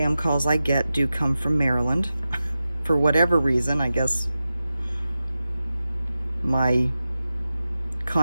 calls I get do come from Maryland. For whatever reason, I guess my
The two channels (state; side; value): inverted; both; correlation -0.93